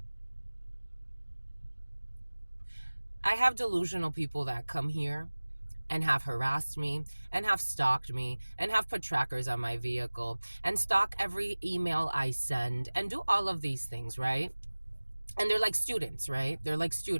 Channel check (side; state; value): both; inverted; correlation -1.00